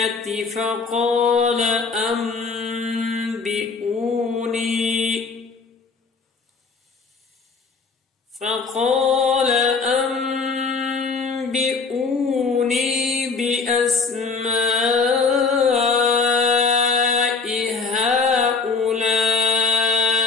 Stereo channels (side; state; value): right; quieter; 4.6 dB